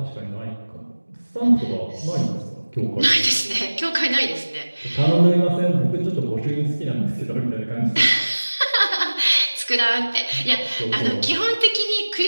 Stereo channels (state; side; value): inverted; both; correlation -1.00